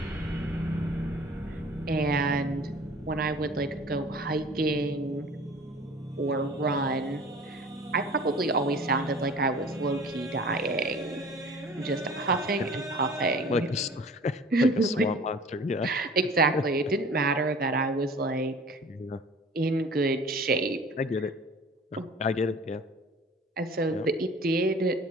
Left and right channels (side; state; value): both; normal; correlation 0.45